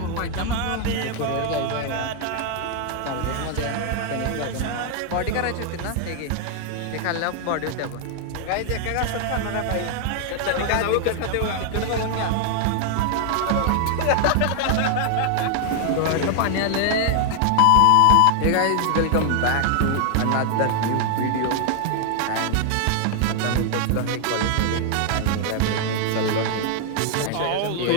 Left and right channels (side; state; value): both; different; correlation 0.00